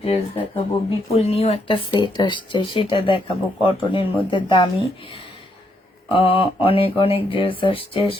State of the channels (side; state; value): both; normal; correlation 0.76